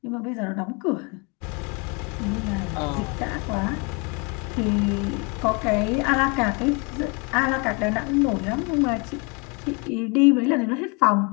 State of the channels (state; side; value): quieter; right; 31.8 dB